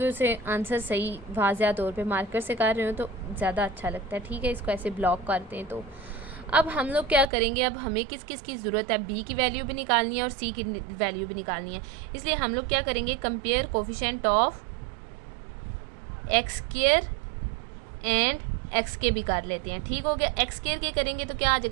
उसे आंसर सही वाज़िया तौर पे मार्कर से कर रहे हो तो ज़्यादा अच्छा लगता है, ठीक है। इसको ऐसे ब्लॉक करते हैं। तो अब हम लोग क्या करेंगे, अब हमें किस किस की ज़रूरत है, बी की वैल्यू भी निकालनी है और सी की वैल्यू भी निकालनी है। इसलिए हम लोग क्या करेंगे, compare coefficient of x square and x के भी कर लेते हैं, ठीक हो गया। एक्स स्क्वायर के करेंगे तो क्या आ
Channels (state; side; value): drops out; left; at 7.2 s